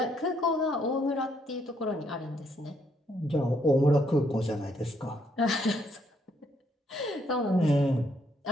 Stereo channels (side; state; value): both; normal; correlation 0.72